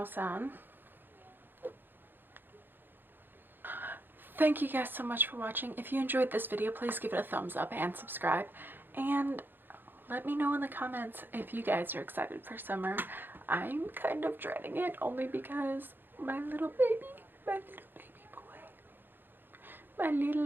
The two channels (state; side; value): late; left; 0.096 ms